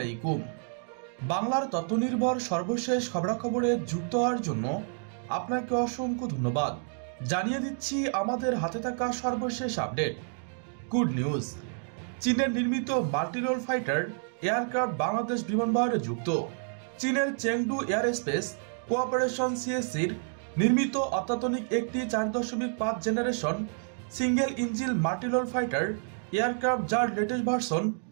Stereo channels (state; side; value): silent; left; 58 dB below the other